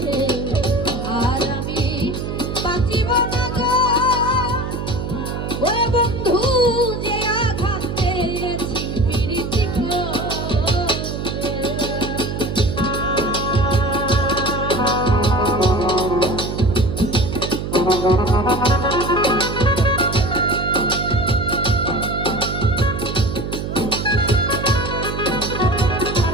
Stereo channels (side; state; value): right; noise; hum, 4 dB below the sound